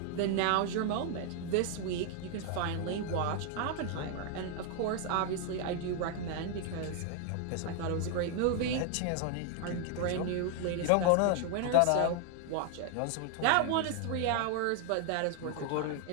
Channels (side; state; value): both; different; correlation 0.00